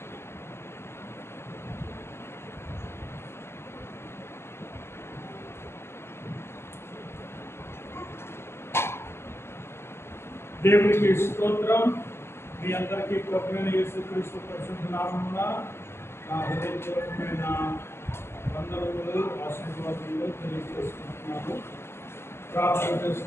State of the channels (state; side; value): late; right; 0.12 ms